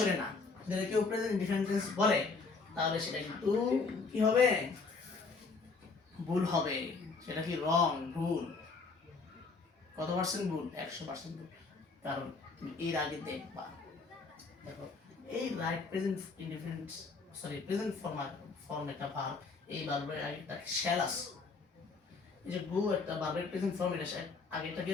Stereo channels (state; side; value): quieter; right; 4.3 dB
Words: না, যদি কেউ প্রেজেন্ট ইনডিফিনিট টেন্স বলে তাহলে সেটা কিন্তু কি হবে, ভুল হবে, সেটা কি রং, ভুল, কত পার্সেন্ট ভুল, 100% ভুল, কারণ তুমি এর আগে দেখবা দেখো এই right present indefinite sorry present form একটা ভার্ব, এই ভার্বের আগে একটা শ্যাল আছে, এই যে গো একটা ভার্বের প্রেজেন্ট ফর্ম, এটা আগে একটা কি